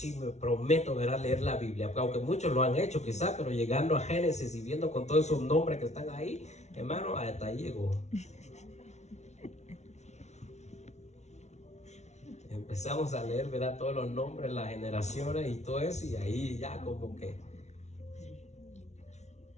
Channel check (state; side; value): late; right; 0.32 ms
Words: me prometo, ¿verdad?, leer la Biblia, aunque muchos lo han hecho quizás, pero llegando a Génesis y viendo con todos esos nombres que están ahí, hermano, hasta ahí llegó. Empezamos a leer, ¿verdad?, todos los nombres, las generaciones y todo eso, y ahí ya como que